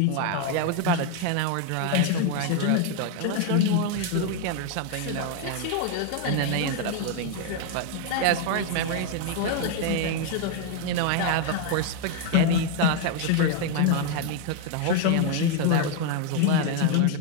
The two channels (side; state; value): both; different; correlation 0.01